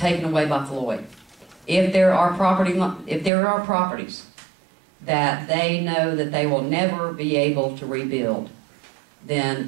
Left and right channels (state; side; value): drops out; left; at 3.3 s